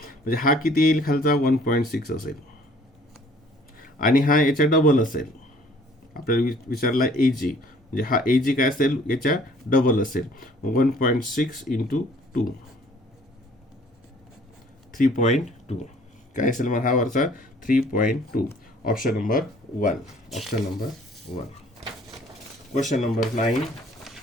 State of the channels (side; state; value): both; normal; correlation 0.56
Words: म्हणजे हा किती येईल खालचा? 1.6 असेल, आणि हा याच्या डबल असेल. आपल्याला विचारला AG, म्हणजे हा AG काय असेल? याच्या डबल असेल. 1.6 × 2, 3.2. काय असेल मग हा वरचा? 3.2. Option number 1. Option number 1. Question number 9.